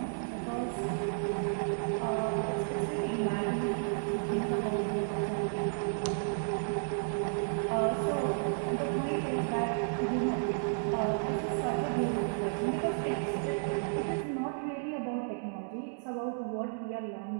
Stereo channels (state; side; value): silent; left; digital silence